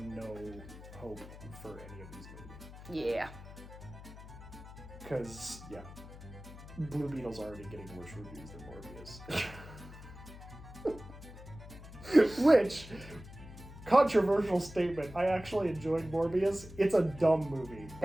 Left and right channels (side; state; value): left; noise; hum, 15 dB below the sound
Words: hope for any of these movies. Yeah. Because, Blue Beetle's already getting worse reviews than Morbius. Which... Controversial statement. I actually enjoyed Morbius. It's a dumb movie,